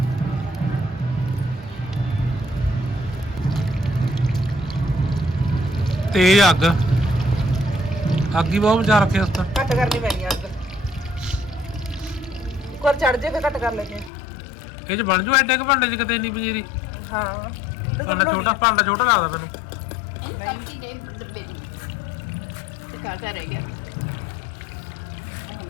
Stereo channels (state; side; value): drops out; right; at 14.1 s